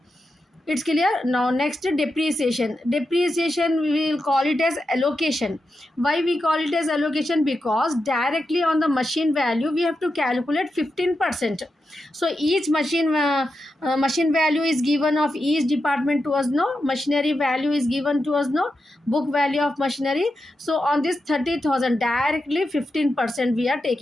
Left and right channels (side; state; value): both; normal; correlation 0.88